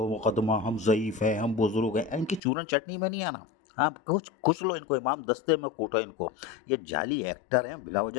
हम ज़ईफ़ हैं, हम बुज़ुर्ग हैं, इनकी चूरन चटनी में नहीं आना। आप कुछ लो इनको, इमाम दस्ते में कूटो इनको। ये जाली एक्टर हैं, बिला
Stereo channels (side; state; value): right; drops out; at 2.4 s